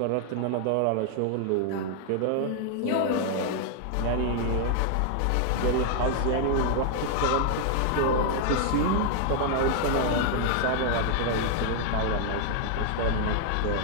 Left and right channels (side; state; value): both; different; correlation 0.00